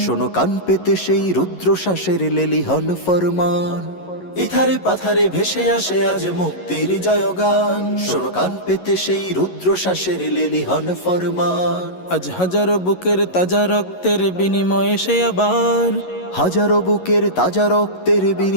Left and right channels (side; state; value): right; late; 11 ms